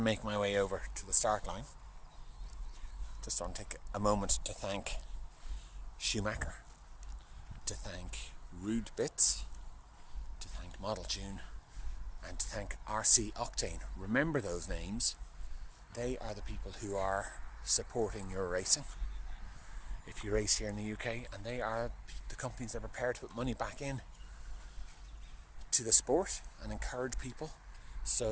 my way over to the start line, just want to take a moment to thank Schumacher, to thank Rude Bits, to thank Model Tune, and to thank RC Octane. Remember those names. They are the people who are supporting your racing if you race here in the UK, and they are the companies that are prepared to put money back in to the sport and encourage people.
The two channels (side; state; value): both; identical; correlation 1.00